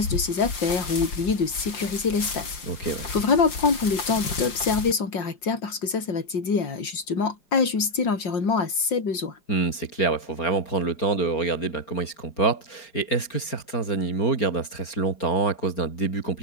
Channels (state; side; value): late; right; 5.7 ms